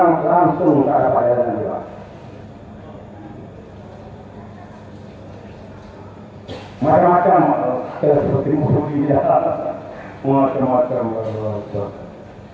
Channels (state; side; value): identical; both; correlation 1.00